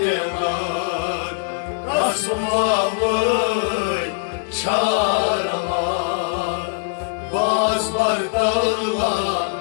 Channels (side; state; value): right; silent; digital silence